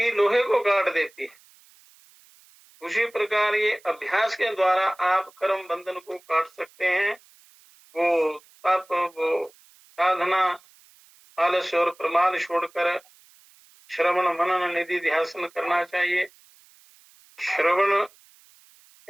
लोहे को काट देती है। उसी प्रकार ये अभ्यास के द्वारा आप कर्म बंधन को काट सकते हैं। वो तप, वो साधना, आलस्य और प्रमाद छोड़कर श्रवण मनन निधि ध्यान करना चाहिए। श्रवण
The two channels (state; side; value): noise; right; hiss, 28 dB below the sound